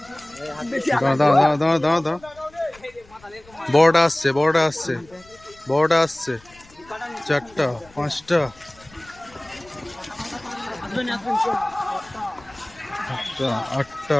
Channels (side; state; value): left; noise; rumble, 26 dB below the sound